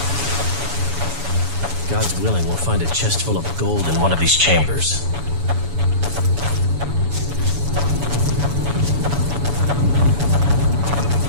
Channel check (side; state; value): left; late; 7.1 ms